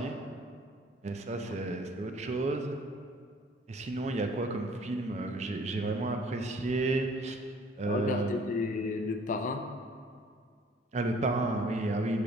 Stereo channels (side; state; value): both; normal; correlation 0.55